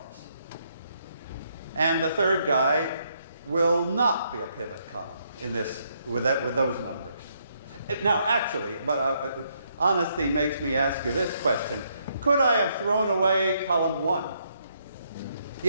And the third guy will not be a pivot column in this, with those numbers. Now, actually, but honesty makes me ask you this question. Could I have thrown away column 1?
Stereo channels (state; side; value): inverted; both; correlation -0.74